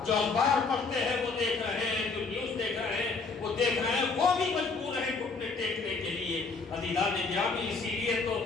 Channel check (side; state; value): right; quieter; 4.3 dB